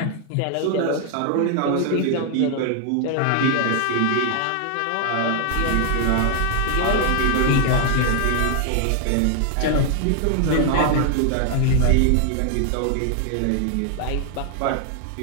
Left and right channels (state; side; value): different; both; correlation 0.00